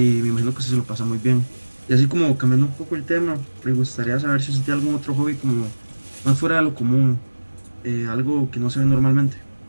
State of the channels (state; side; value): inverted; both; correlation -1.00